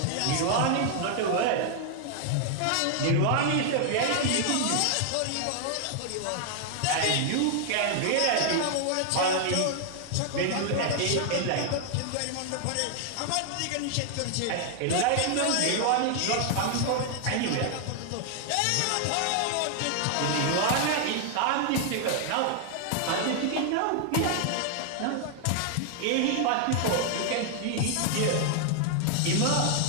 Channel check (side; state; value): both; different; correlation 0.00